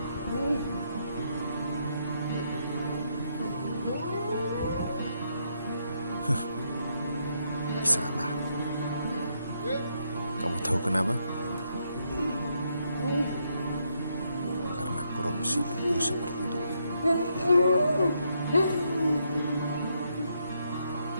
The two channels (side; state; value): both; inverted; correlation -0.77